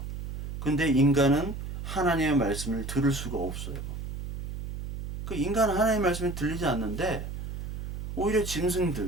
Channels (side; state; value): right; noise; hum, 6 dB below the sound